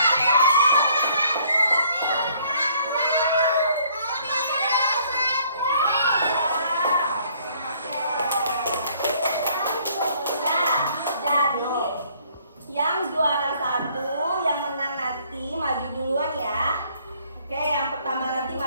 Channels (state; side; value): inverted; both; correlation -0.62